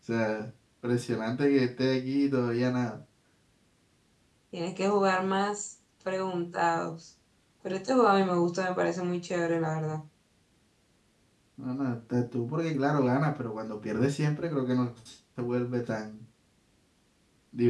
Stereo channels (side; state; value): both; identical; correlation 1.00